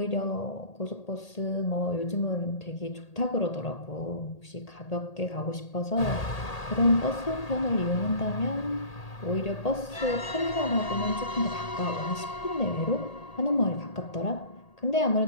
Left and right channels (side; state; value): right; late; 1.8 ms